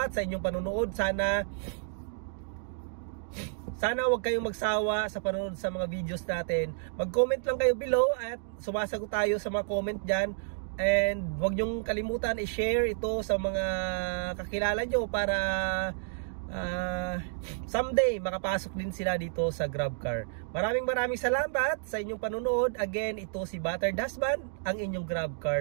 sa inyong panunood. Sana wag kayong magsawa sa panonood sa mga videos natin. Mag-comment lang kayo below at sumasagot tayo sa mga comment dyan. And huwag nyong kalimutan i-share ito sa mga kakilala nyo para someday makapasok din sila dito sa GrabCar. Maraming salamat sa inyong panunood. Again, ito si Battered Husband, ang inyong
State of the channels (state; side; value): silent; left; digital silence